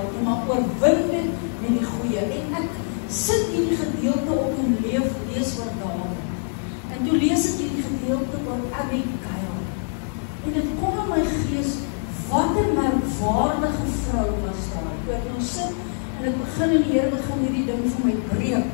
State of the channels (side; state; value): right; silent; 63 dB below the other